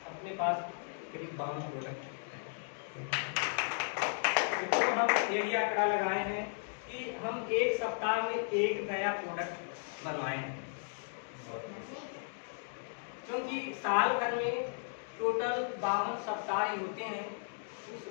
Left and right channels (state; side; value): silent; right; digital silence